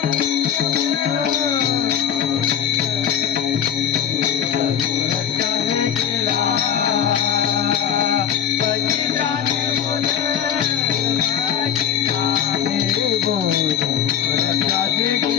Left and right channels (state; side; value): quieter; right; 8.9 dB